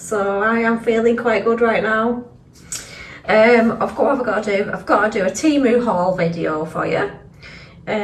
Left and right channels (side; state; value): both; identical; correlation 1.00